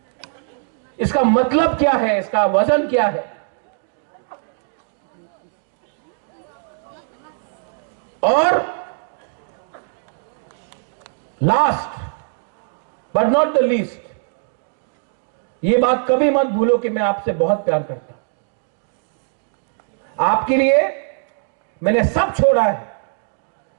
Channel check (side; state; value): left; silent; digital silence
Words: इसका मतलब क्या है, इसका वजन क्या है। और last but not the least, ये बात कभी मत भूलो कि मैं आपसे बहुत प्यार करता हूं। आपके लिए मैंने सब छोड़ा है।